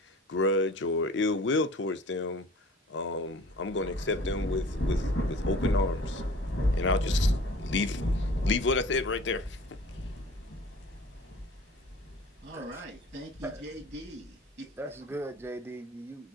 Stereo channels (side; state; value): both; normal; correlation 0.45